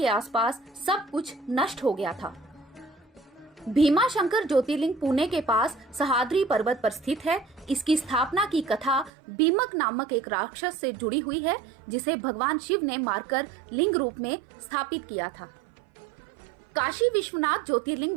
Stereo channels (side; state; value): left; drops out; at 9.1 s